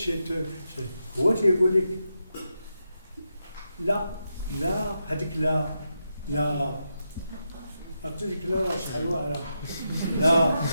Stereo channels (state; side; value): inverted; both; correlation -0.86